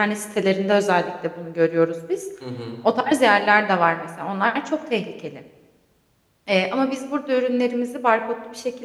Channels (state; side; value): identical; both; correlation 1.00